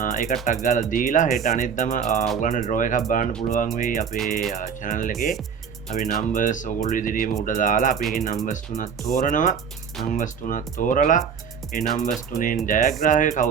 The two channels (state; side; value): quieter; left; 6.8 dB